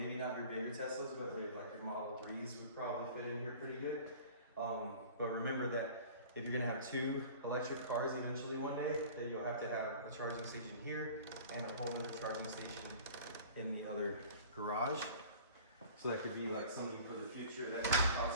not your bigger Teslas, but like your Model 3s would probably fit in here pretty good. But remember that if you're gonna have 2 electric cars eventually one day, then you'll have to have a charging station here and a whole other charging station in the other garage. So that could be like something for the future that could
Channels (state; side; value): inverted; both; correlation -0.44